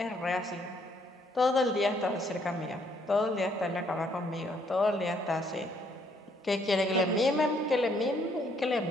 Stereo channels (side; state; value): both; normal; correlation 0.68